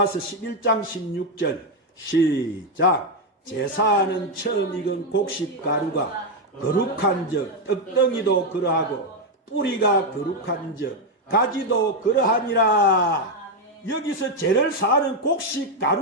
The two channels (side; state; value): both; normal; correlation 0.04